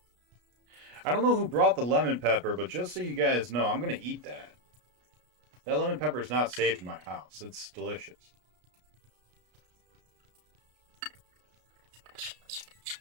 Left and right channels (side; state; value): left; late; 33 ms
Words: I don't know who brought the lemon pepper, but just so you guys know, I'm going to eat that. That lemon pepper is not safe in my house. It's delicious.